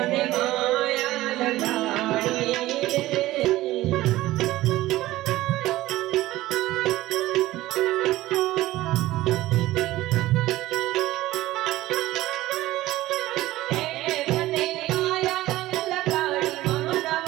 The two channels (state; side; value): quieter; left; 16.6 dB